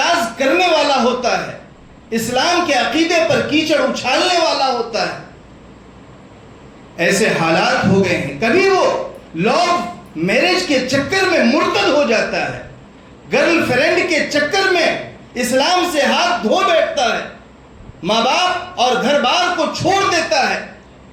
کرنے والا ہوتا ہے، اسلام کے عقیدے پر کیچڑ اچھالنے والا ہوتا ہے. ایسے حالات ہو گئے ہیں. کبھی وہ لوگ میرج کے چکر میں مرتد ہو جاتا ہے، گرل فرینڈ کے چکر میں اسلام سے ہاتھ دھو بیٹھتا ہے، ماں باپ اور گھر بار کو چھوڑ دیتا ہے.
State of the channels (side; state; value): both; identical; correlation 1.00